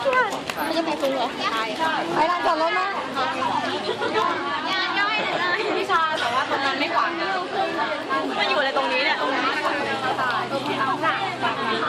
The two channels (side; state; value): both; identical; correlation 1.00